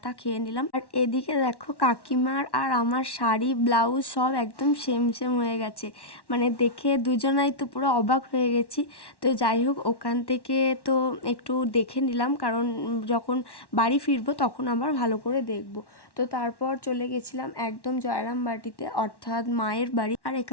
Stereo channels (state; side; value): late; right; 1.1 ms